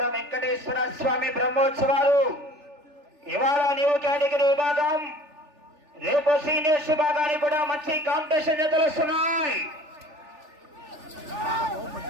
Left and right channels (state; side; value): late; left; 3.4 ms